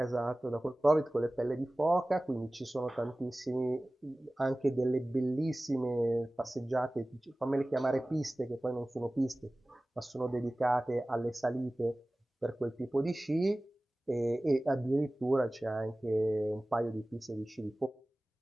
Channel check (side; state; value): both; normal; correlation 0.98